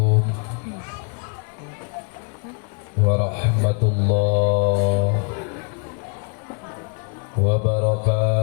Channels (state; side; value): quieter; right; 37.0 dB